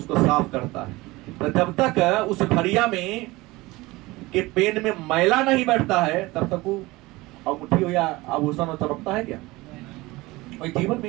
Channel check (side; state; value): left; quieter; 20.9 dB